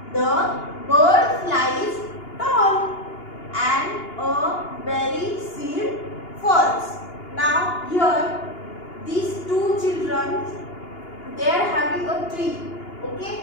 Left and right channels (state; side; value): late; right; 2.8 ms